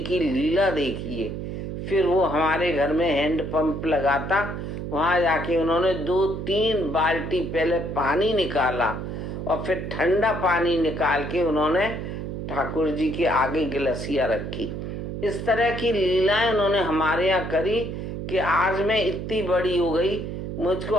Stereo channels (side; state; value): right; noise; hum, 6 dB below the sound